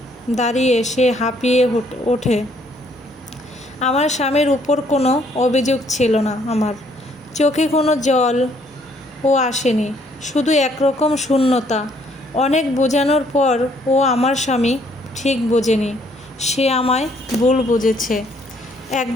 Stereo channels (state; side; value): normal; both; correlation 0.66